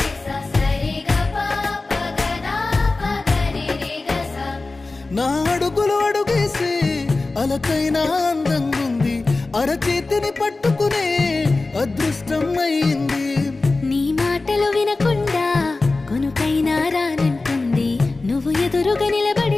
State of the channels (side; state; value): right; quieter; 3.4 dB